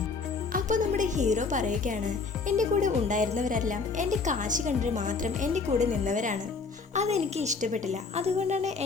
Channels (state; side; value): quieter; right; 4.5 dB